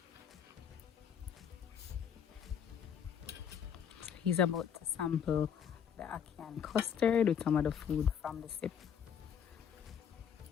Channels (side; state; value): right; quieter; 8.1 dB